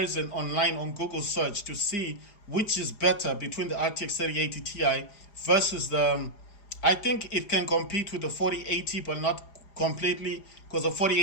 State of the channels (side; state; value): right; late; 4.9 ms